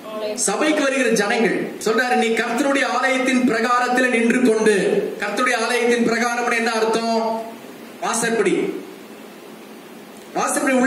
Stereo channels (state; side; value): identical; both; correlation 1.00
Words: சபைக்கு வருகிற ஜனங்கள். சொல்றாரு, நீ கர்த்தருடைய ஆலயத்தின் பிரகாரத்தில் நின்று கொண்டு. கர்த்தருடைய ஆலயத்தின் பிரகாரம் என்ன அர்த்தம்? வாசற்படி. வாசற்படி